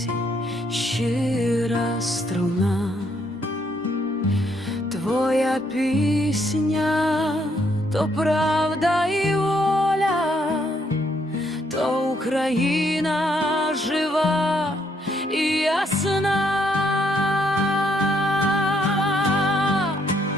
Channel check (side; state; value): both; normal; correlation 0.72